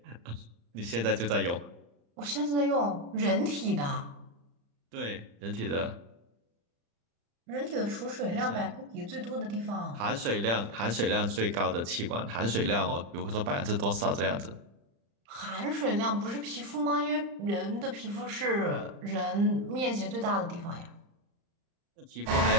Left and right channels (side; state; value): left; late; 35 ms